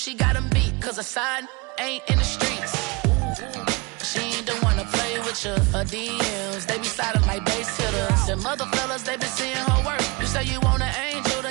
got him beat. Cause her side ain't in the streets. She ain't the one to play with you. Her DMs, they be sliding like base hitters. Them other fellas, they been seeing her work. You say you want an angel,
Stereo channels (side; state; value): left; quieter; 27.1 dB